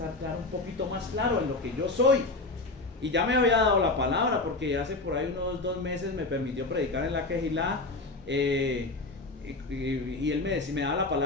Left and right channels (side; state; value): right; quieter; 3.2 dB